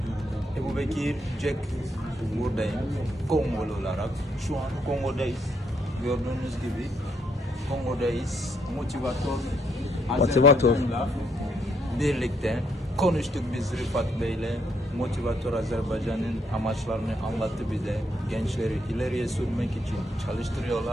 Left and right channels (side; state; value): both; normal; correlation 0.73